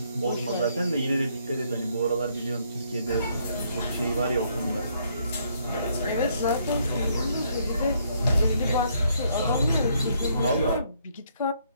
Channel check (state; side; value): inverted; both; correlation -0.70